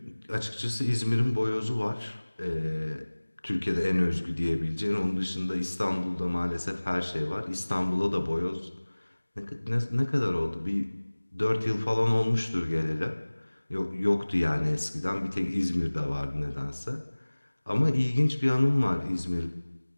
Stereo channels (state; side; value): inverted; both; correlation -1.00